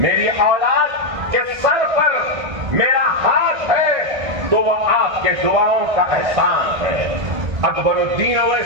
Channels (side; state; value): left; late; 1.6 ms